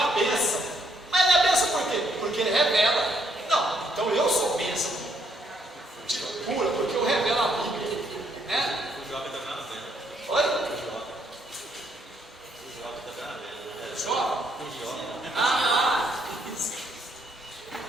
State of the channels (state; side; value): normal; both; correlation 0.71